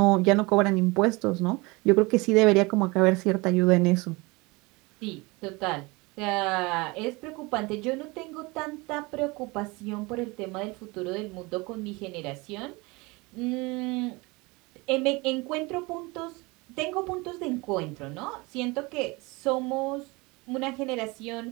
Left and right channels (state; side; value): quieter; left; 24.9 dB